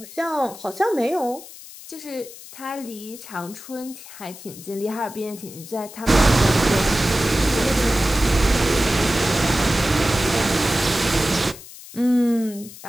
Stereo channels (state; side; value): noise; left; hiss, 16 dB below the sound